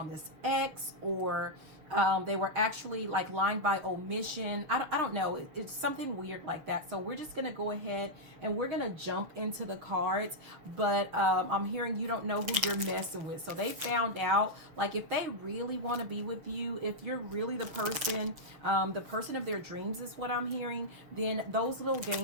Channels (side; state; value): left; late; 6.8 ms